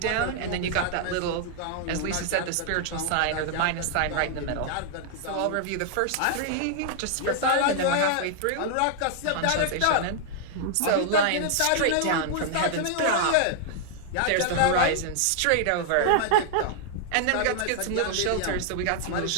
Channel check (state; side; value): different; both; correlation 0.00